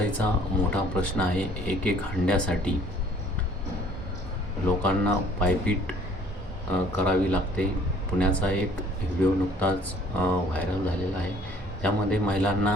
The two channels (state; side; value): normal; both; correlation 0.56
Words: मोठा प्रश्न आहे. एक हंड्यासाठी लोकांना पायपीट करावी लागते. पुण्याचा एक व्हिडिओ नुकताच व्हायरल झालेला आहे. त्यामध्ये